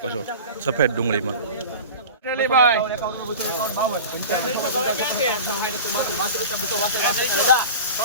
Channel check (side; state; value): both; inverted; correlation -0.35